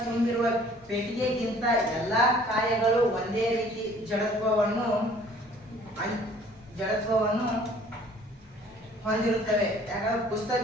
ತುಂಬಿರುವ ಪೆಟ್ಟಿಗೆಗಿಂತ ಎಲ್ಲಾ ಕಾಯಗಳು ಒಂದೇ ರೀತಿ ಜಡತ್ವವನ್ನು ಹೊಂದಿರುತ್ತವೆ. ಯಾಕಂದ್ರೆ ಪುಸ್ತಕ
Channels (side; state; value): both; normal; correlation 0.54